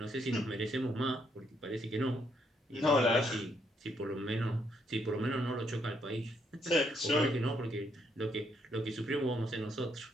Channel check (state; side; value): normal; both; correlation 0.74